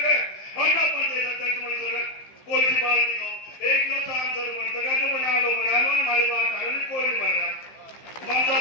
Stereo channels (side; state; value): right; late; 15 ms